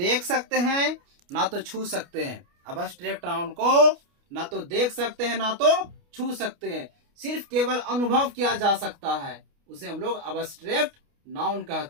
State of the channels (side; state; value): left; late; 29 ms